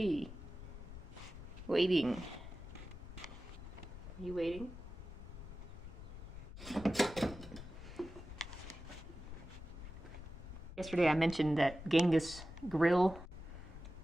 waiting. Are you waiting? Yesterday I mentioned that Genghis grill,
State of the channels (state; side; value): noise; left; rumble, 12 dB below the sound